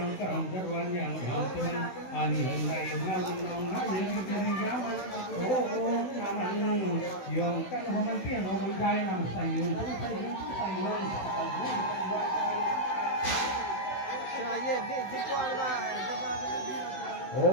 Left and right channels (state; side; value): late; right; 16 ms